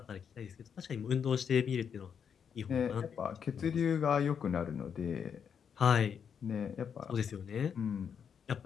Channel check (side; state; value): right; quieter; 7.3 dB